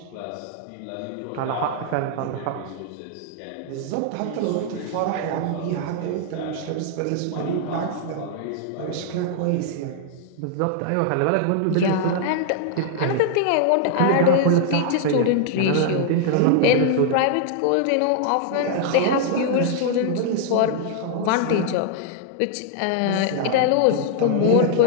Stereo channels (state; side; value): different; both; correlation -0.01